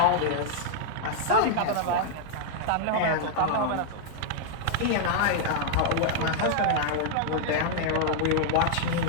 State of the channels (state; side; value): different; both; correlation -0.01